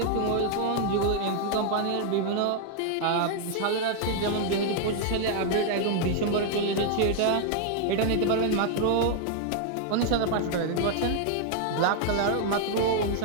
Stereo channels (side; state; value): both; different; correlation 0.00